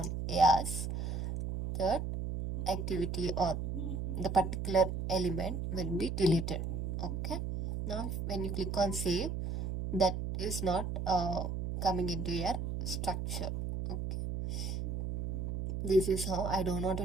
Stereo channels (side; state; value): right; noise; hum, 3 dB below the sound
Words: yes, that activity or the particular element will be deleted. Okay, now when you click on save, that is not coming into your structure. Okay, this is how. I don't want to